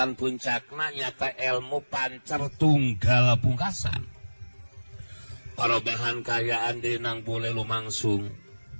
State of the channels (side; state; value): both; inverted; correlation -1.00